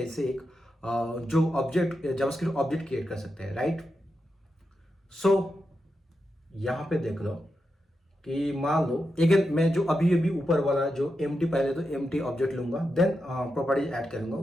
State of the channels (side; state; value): both; normal; correlation 0.87